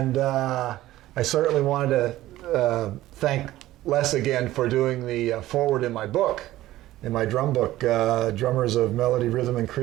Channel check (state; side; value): quieter; left; 15.5 dB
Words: I certainly wanted to thank Les again for doing the foreword in my book, in my drum book, Drummers of Melody, Rhythm, and